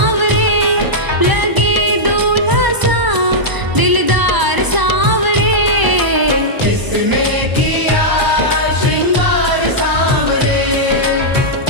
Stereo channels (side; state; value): left; late; 1.0 ms